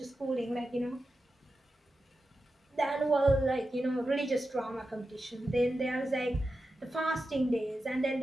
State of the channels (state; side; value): normal; both; correlation 0.91